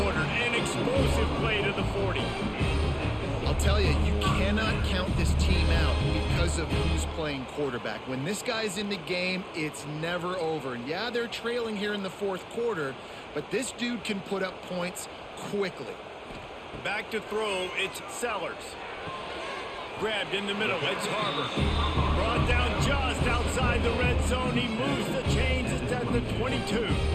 ordered, an explosive play to the 40. I'll tell you, you cannot count this team out because of who's playing quarterback. When this guy's in the game, it's never over. And yeah, they're trailing here in the fourth quarter, but this dude can put up points quickly. Back to throw, it's Sellers. Grabbed in the middle, it's Harbor. Brought down just outside the red zone. He moves the chains, it's at the 22.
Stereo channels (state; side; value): identical; both; correlation 1.00